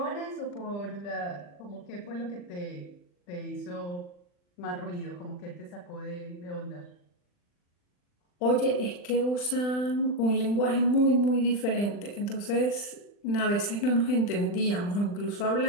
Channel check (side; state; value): right; late; 40 ms